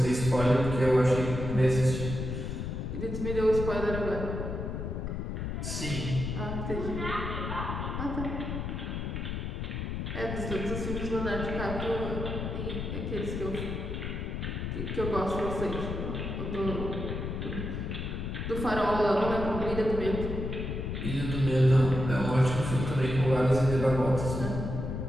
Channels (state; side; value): noise; left; rumble, 4 dB below the sound